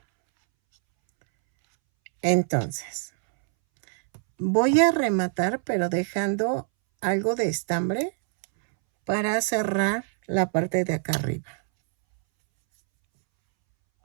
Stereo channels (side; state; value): left; silent; 62 dB below the other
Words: Entonces, voy a rematar, pero dejando algo de estambre para cerrar la parte de acá arriba.